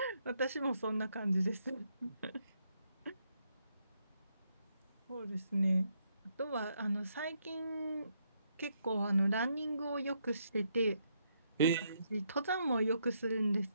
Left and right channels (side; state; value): both; inverted; correlation -0.76